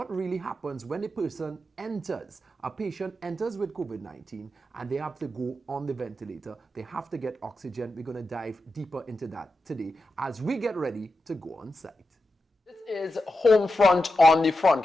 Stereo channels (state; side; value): normal; both; correlation 0.89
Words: really happens when a patient enters with COVID-19 and they have to go on the ventilator. They have to get oxygen. We're going to dive deeper into that today as we get ready to go on site. This is Homefront on the front